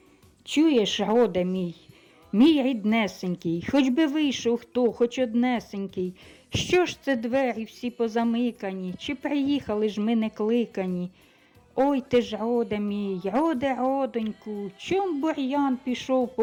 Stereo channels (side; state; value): both; identical; correlation 1.00